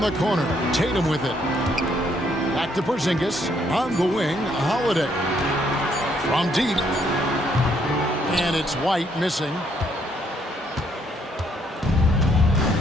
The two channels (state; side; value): normal; both; correlation 0.70